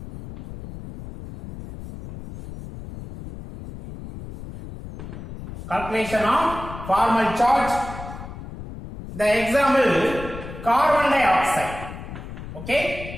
Calculation of formal charge. The example, carbon dioxide.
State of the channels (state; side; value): noise; left; rumble, 11 dB below the sound